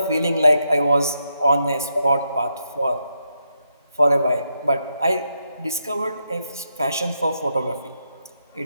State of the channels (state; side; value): inverted; both; correlation -0.82